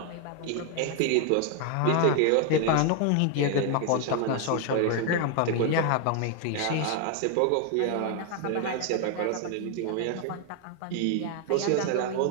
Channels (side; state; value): both; different; correlation 0.00